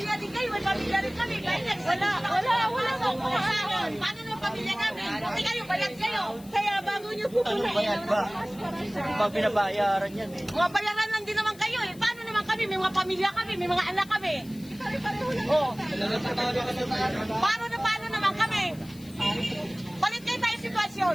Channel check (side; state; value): left; noise; hiss, 22 dB below the sound